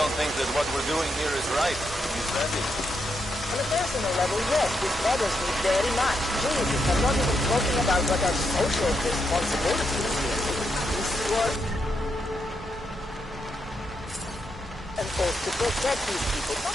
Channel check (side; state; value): both; normal; correlation 0.82